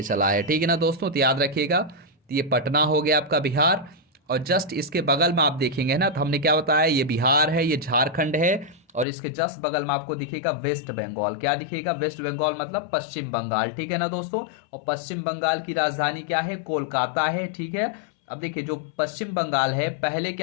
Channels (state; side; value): drops out; right; at 9.1 s